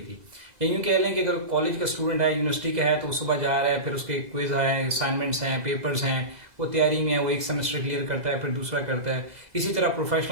थी। या यूँ कह लें कि अगर कॉलेज का स्टूडेंट है, यूनिवर्सिटी का है, तो वो सुबह जा रहा है, फिर उसके क्विज हैं, असाइनमेंट्स हैं, पेपर्स हैं, वो तैयारी में है, वो एक सेमेस्टर क्लियर करता है, फिर दूसरा करता है। इसी तरह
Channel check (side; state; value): left; late; 2.0 ms